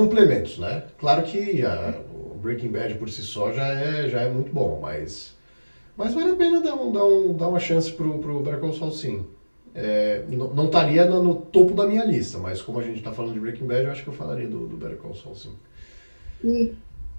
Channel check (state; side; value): inverted; both; correlation -1.00